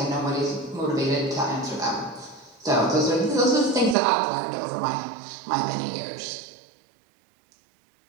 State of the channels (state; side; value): drops out; left; at 4.0 s